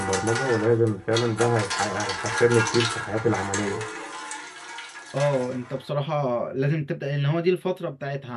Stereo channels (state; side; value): identical; both; correlation 1.00